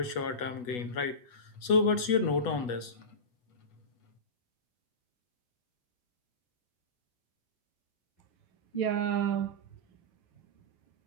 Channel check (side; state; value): right; late; 8.2 ms